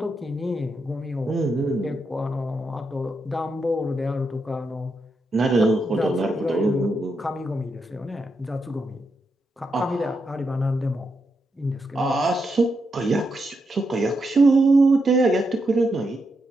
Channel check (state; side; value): normal; both; correlation 0.83